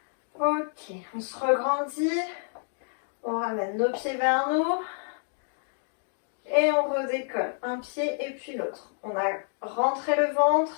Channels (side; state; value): right; silent; digital silence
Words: Ok, on se regrandit. On ramène nos pieds vers nous. Et on redécolle. Un pied et puis l'autre. On a rentré le